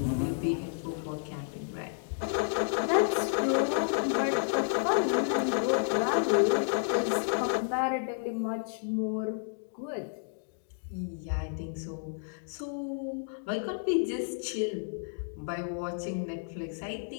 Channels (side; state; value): right; silent; digital silence